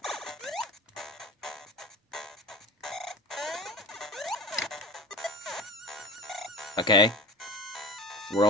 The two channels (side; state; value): both; normal; correlation 0.35